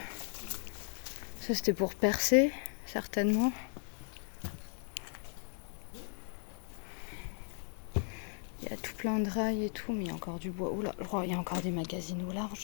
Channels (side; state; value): right; silent; 53 dB below the other